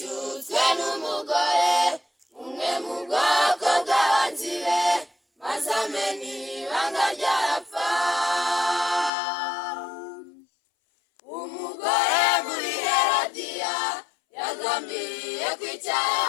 n'umugore umwe mu bwoko bw'abanzi be, maze amenya ibanga ryarapfa. Umugore muri Herodiya yagambiriye kwica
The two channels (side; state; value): right; drops out; at 9.1 s